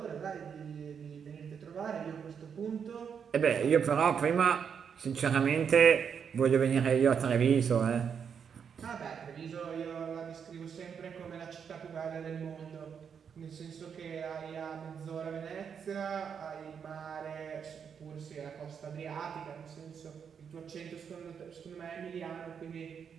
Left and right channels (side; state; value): left; quieter; 7.1 dB